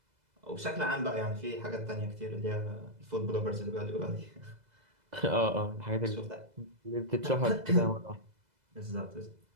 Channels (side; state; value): left; late; 2.0 ms